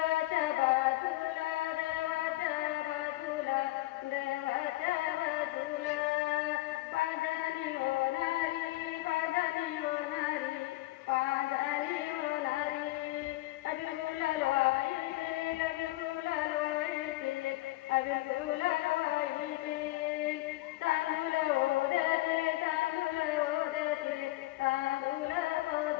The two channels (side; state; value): right; quieter; 18.4 dB